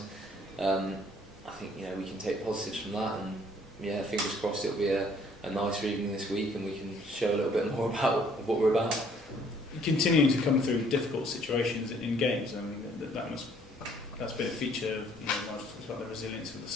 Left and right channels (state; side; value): normal; both; correlation 0.61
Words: I think we can take positives from that, and fingers crossed it'll be a nicer evening this week and we can show a little bit more about what we're about. Continuing to come through difficult situations in games, I mean that's been a feature of Nigel talks about the resilience of the